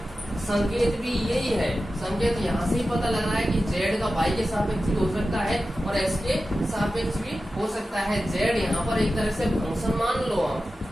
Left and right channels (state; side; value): normal; both; correlation 0.93